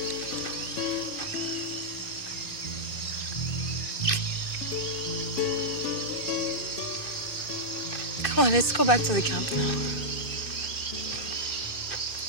Come on, let's go back to the camp now.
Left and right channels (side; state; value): right; late; 2.6 ms